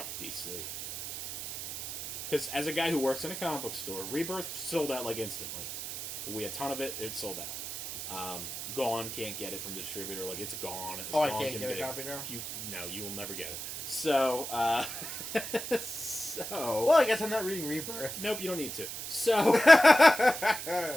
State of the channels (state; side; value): noise; right; hiss, 7 dB below the sound